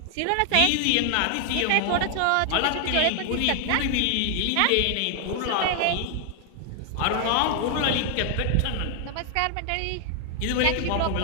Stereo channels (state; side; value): different; both; correlation 0.00